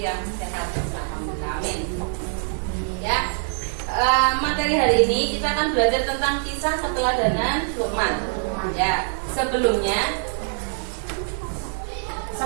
yang sehat. Alhamdulillah, amin. Ya, materi hari ini kita akan belajar tentang kisah keteladanan Luqman. Ya, sebelumnya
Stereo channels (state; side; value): silent; left; 63 dB below the other